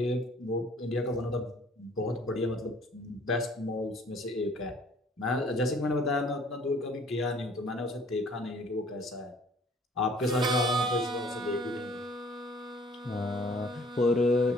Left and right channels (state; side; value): normal; both; correlation 0.56